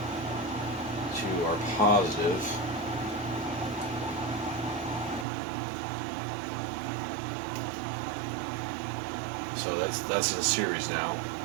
to our positive. So that's in series now.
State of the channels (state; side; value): drops out; left; at 5.2 s